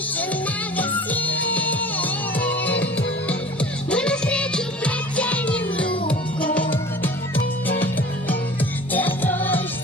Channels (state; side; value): normal; both; correlation 0.43